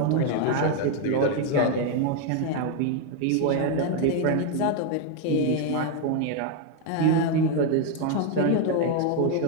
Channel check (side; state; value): both; different; correlation 0.01